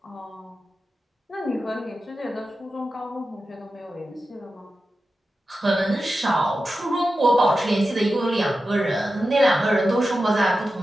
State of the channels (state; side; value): normal; both; correlation 0.92